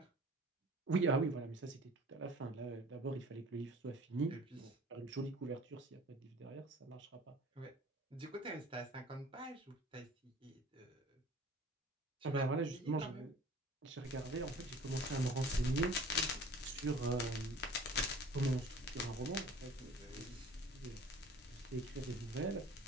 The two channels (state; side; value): normal; both; correlation 0.46